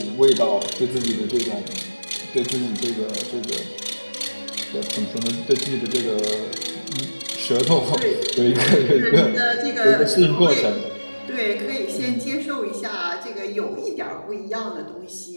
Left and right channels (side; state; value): both; inverted; correlation -1.00